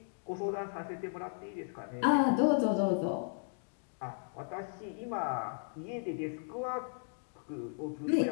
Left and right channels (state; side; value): silent; right; digital silence